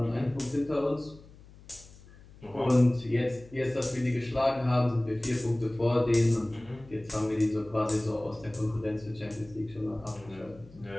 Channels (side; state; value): left; noise; hum, 22 dB below the sound